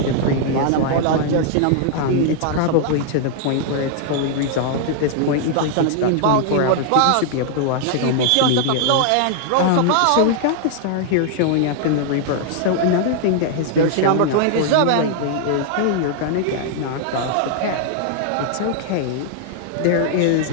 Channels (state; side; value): different; both; correlation -0.01